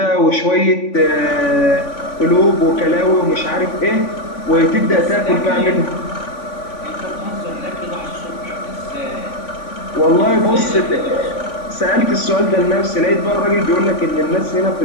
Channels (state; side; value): late; right; 3.5 ms